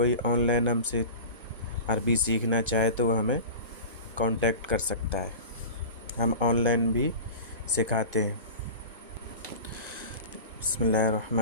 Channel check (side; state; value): both; inverted; correlation -0.34